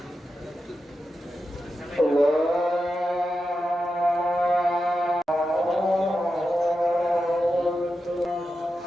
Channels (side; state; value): both; normal; correlation 0.89